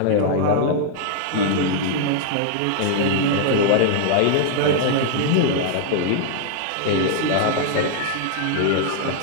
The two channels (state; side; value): different; both; correlation -0.01